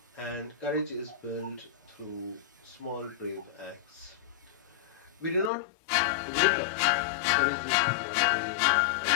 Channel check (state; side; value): drops out; right; at 5.5 s